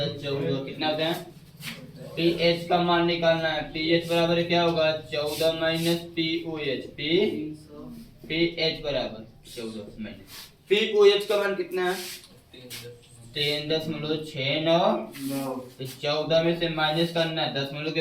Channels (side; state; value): both; identical; correlation 1.00